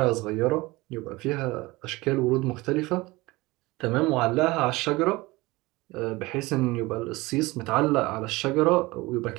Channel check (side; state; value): left; quieter; 21.5 dB